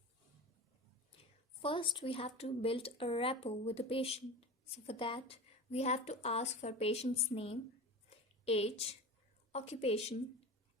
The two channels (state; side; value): normal; both; correlation 0.31